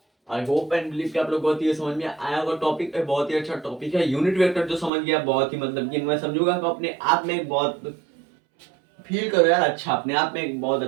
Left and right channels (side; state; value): left; drops out; at 4.9 s